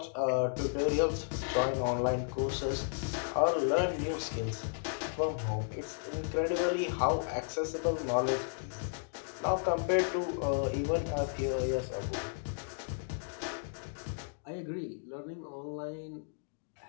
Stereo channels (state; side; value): silent; right; digital silence